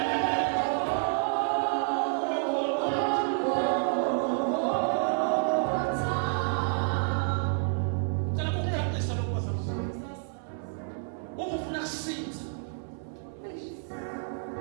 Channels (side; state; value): left; silent; 58 dB below the other